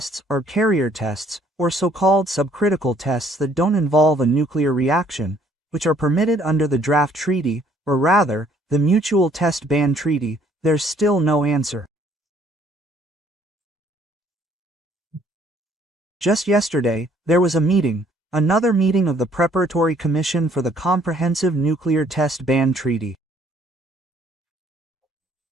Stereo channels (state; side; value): normal; both; correlation 0.62